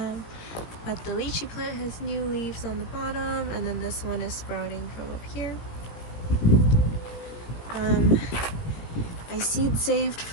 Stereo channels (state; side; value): late; right; 17 ms